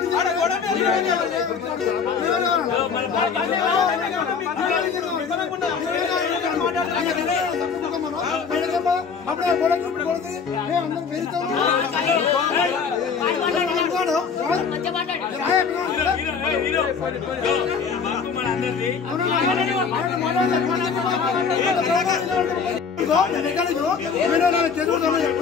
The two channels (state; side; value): quieter; right; 5.9 dB